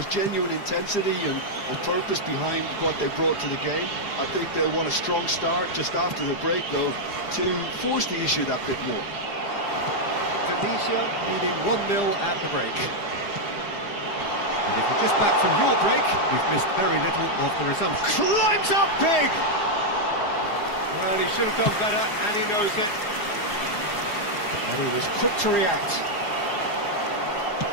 genuine intensity and purpose behind what they brought to the game. I think they'll want a strong start just after the break, though, to force the issue that bit more. Tunisia leading 1-0 at the break. And if you're just back from your break, you've missed very little of the resumption. Climbs up big! Well, he should have done better, and he knows it. And he was quick to react.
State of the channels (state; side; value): late; right; 4.9 ms